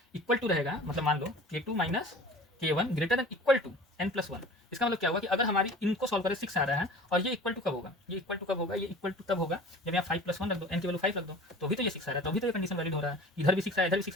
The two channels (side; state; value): both; normal; correlation 0.42